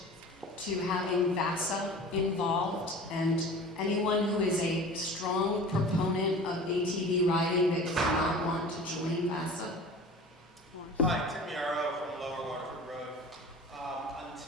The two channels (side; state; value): both; normal; correlation 0.40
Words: to having VASA involved, and anyone who is a strong proponent of ATV riding that does not want to join VASA? Hi, Tim Yarrow from Lower Waterford Road.